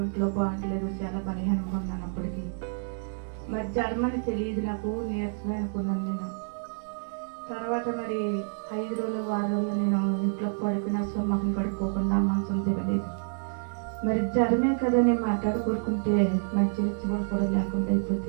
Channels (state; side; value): silent; left; 59 dB below the other